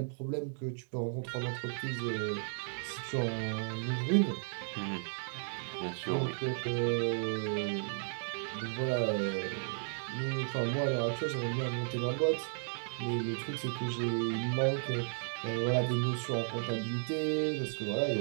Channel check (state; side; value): silent; left; digital silence